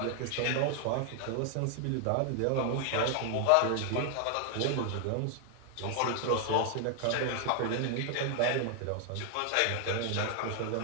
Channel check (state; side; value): different; both; correlation 0.00